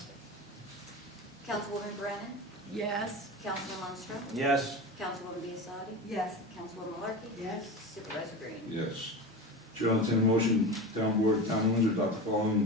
Councilwoman Brennan? Yes. Councilman Lundstrom? Yes. Councilwoman Biassadi? Yes. Councilwoman Larky? Yes. Supervisor Green? Yes. Chair will entertain a motion, town board of town of Windsor adopt the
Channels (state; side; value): normal; both; correlation 0.27